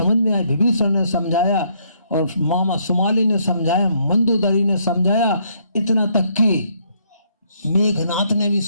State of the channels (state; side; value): inverted; both; correlation -0.70